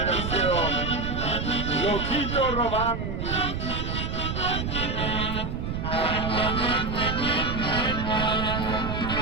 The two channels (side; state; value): right; noise; rumble, 3 dB below the sound